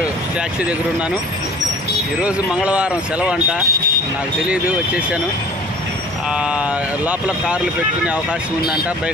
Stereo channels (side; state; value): both; normal; correlation 0.46